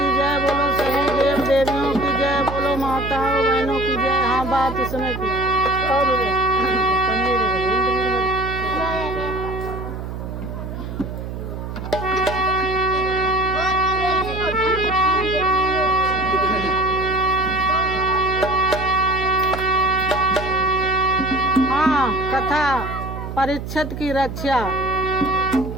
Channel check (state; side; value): noise; right; hum, 7 dB below the sound